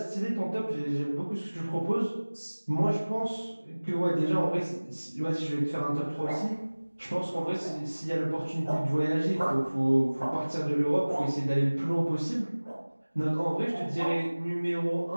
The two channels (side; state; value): both; inverted; correlation -1.00